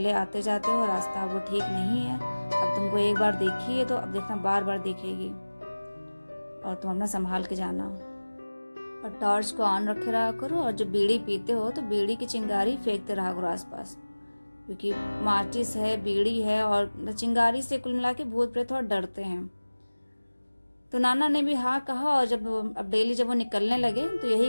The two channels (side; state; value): both; inverted; correlation -1.00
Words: आते जाते हो, रास्ता वो ठीक नहीं है, अब तुमको एक बार देखी है तो अब देखना बार बार देखेगी, और तुम अपना संभाल के जाना, और टॉर्च को ऑन रखे रहा करो, और जब बीड़ी पीते हो तो बीड़ी की चिंगारी फेंकते रहा करो आसपास, क्योंकि माचिस है, बीड़ी है, और चिंगारी से कुल मिला के भूत प्रेत थोड़ा डरते हैं। तो नाना ने भी हाँ कहा, और जब अब डेली जब वो निकलने लगे तो